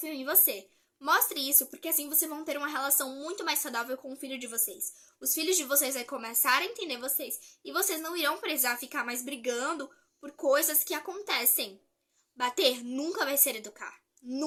em você. Mostre isso porque assim vocês vão ter uma relação muito mais saudável com o filho de vocês. Os filhos de vocês vão começar a entender vocês e vocês não irão precisar ficar mais brigando por coisas que acontecem. Bater nunca vai ser educar.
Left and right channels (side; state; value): both; identical; correlation 1.00